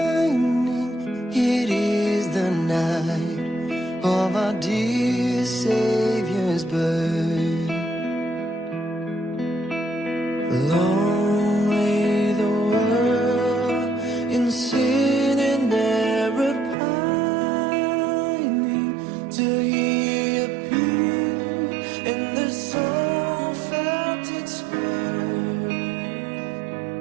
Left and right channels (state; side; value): drops out; left; at 16.8 s